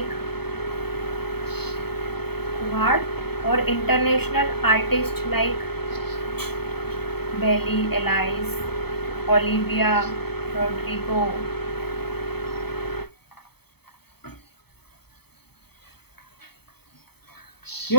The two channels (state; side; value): late; right; 0.97 ms